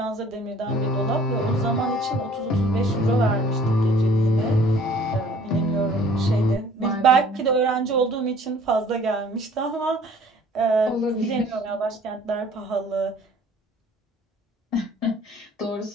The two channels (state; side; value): normal; both; correlation 0.53